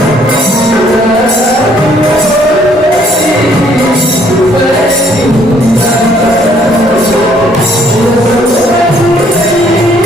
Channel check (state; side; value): normal; both; correlation 0.64